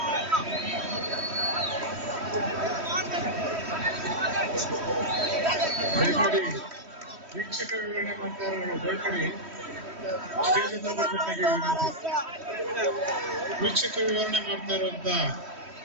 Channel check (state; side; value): late; left; 3.1 ms